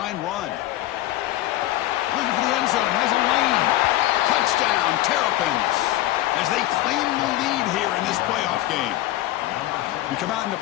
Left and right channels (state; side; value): quieter; right; 15.3 dB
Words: run. Looking for the end zone, has a lane. Touchdown, Terrapins, as they claim the lead here in this playoff game. We come out in the